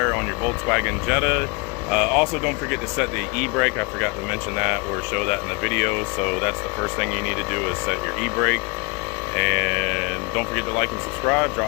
on your Volkswagen Jetta. Also, don't forget to set the e-brake. I forgot to mention that or show that in the video. So that's the first thing you need to do is set your e-brake. And don't forget to like and subscribe.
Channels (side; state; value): right; quieter; 28.6 dB